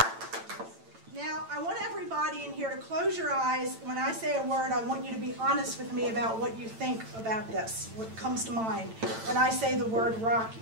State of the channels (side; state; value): left; late; 9.0 ms